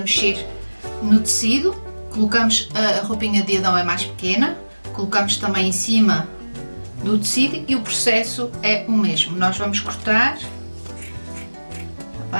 mexer no tecido. Colocamos, a roupinha de Adão é mais pequena, colocamos também em cima do tecido e o processo é o mesmo. Nós vamos cortar, está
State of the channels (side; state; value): both; inverted; correlation -1.00